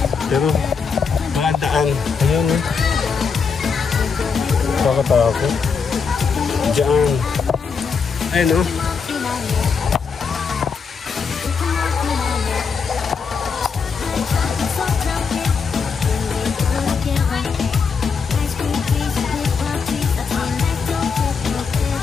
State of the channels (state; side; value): quieter; right; 5.6 dB